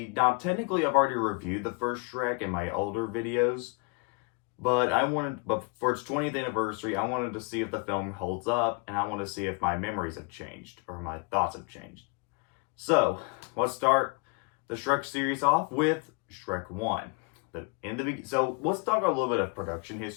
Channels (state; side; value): quieter; right; 31.6 dB